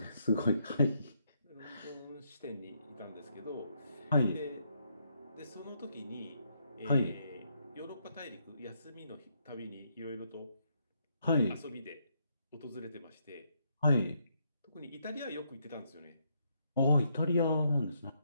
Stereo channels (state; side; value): inverted; both; correlation -0.75